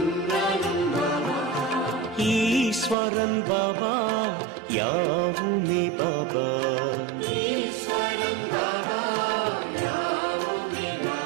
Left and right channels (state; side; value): drops out; left; at 3.0 s